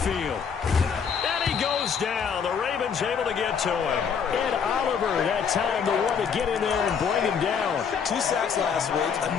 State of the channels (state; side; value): quieter; right; 6.7 dB